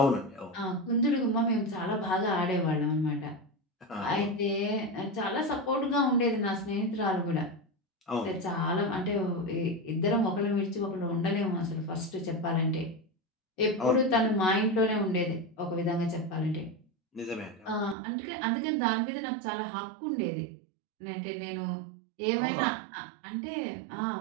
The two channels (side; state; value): left; drops out; at 17.9 s